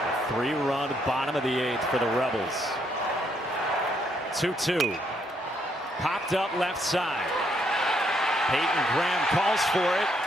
A 3-run bottom of the 8th for the Rebels. 2-2. Popped up left side. Hayden Graham calls for it.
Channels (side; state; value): both; normal; correlation 0.73